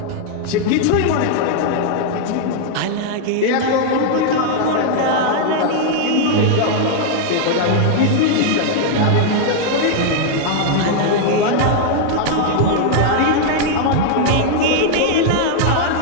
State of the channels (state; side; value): different; both; correlation 0.00